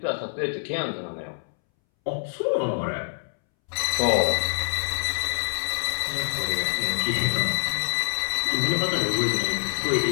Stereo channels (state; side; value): silent; right; 61 dB below the other